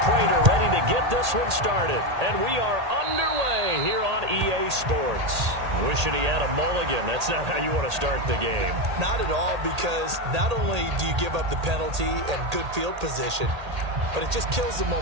Prater ready to get this one started. And we are underway here on EA Sports. Wishing he had a mulligan. That's not how you want to start the game. Not at all, because not only do you give up the penalty and good field position, but it just kills the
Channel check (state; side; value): late; left; 1.8 ms